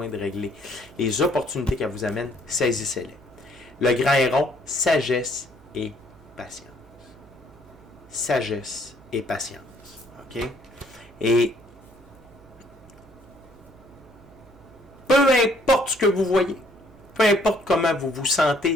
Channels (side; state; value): right; noise; hum, 25 dB below the sound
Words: de régler, les opportunités qu'elle vous amène, saisissez-les. Le grand héron, sagesse et patience. Sagesse et patience. OK? Et peu importe ce que vous voyez, peu importe comment vous vous